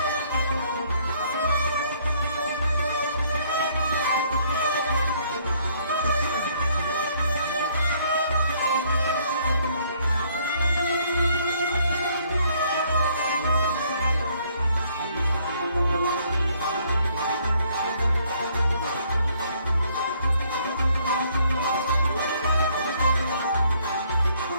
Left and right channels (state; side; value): inverted; both; correlation -0.65